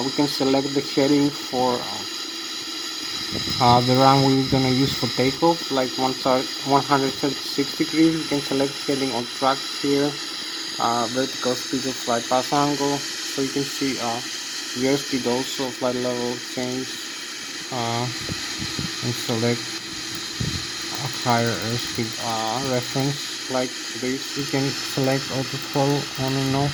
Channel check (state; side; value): identical; both; correlation 1.00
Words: We can select the heading for the runway we're gonna use for takeoff, like 136 degrees. We can select heading on track here. Vertical speed of flight path angle, so you can see the airspeed also, flight level change, and select a higher airspeed reference like this. You can select auto throttle on and off,